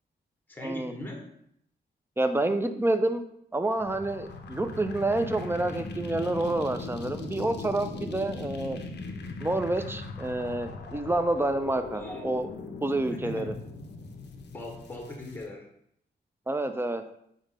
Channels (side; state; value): both; normal; correlation 0.83